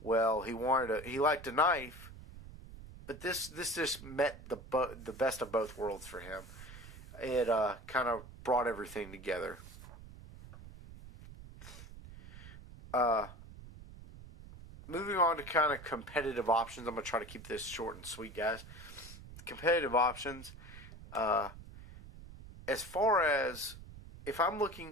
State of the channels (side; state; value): right; noise; rumble, 15 dB below the sound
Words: he liked a knife, but this just met the best of both worlds for him. It kind of brought everything together. Moving on to kind of competitive options. I'm going to try to keep this short and sweet, guys. Competitive options. As far as if I'm